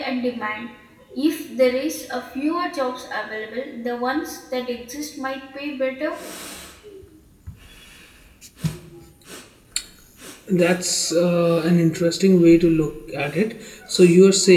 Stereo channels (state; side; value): identical; both; correlation 1.00